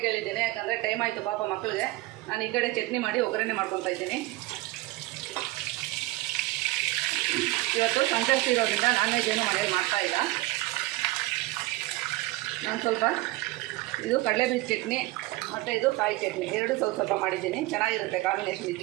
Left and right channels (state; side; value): quieter; left; 19.5 dB